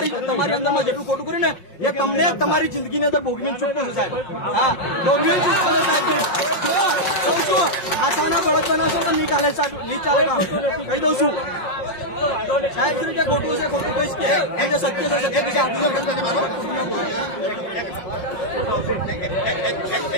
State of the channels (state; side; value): late; right; 5.5 ms